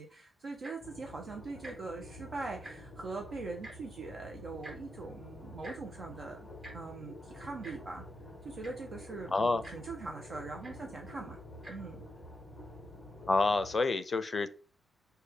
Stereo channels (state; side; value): normal; both; correlation 0.86